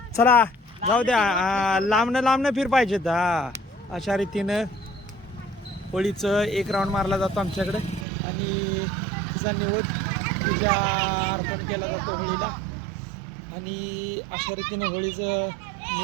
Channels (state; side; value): drops out; left; at 8.1 s